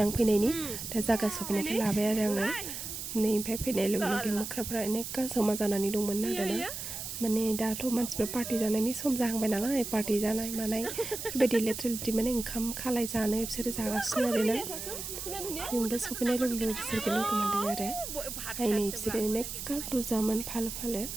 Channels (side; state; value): right; noise; hiss, 7 dB below the sound